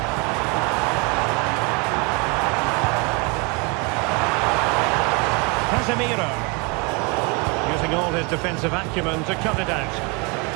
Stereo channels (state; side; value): quieter; left; 30.4 dB